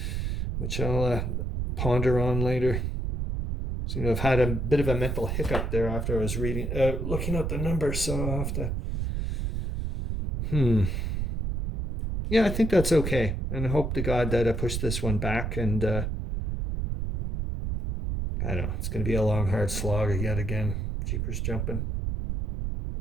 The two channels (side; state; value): right; noise; rumble, 2 dB below the sound